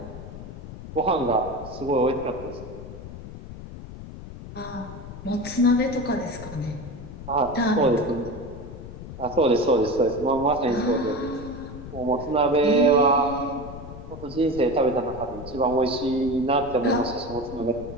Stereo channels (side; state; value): left; noise; rumble, 12 dB below the sound